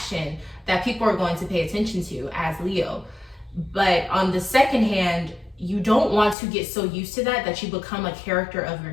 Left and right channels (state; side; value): drops out; right; at 6.4 s